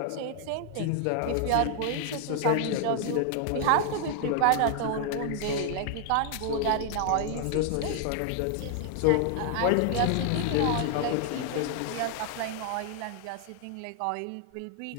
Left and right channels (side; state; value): both; different; correlation 0.00